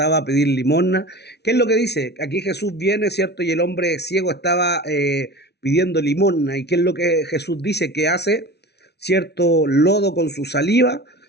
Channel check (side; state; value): right; late; 0.49 ms